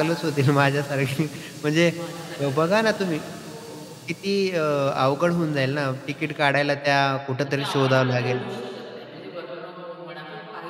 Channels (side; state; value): both; identical; correlation 1.00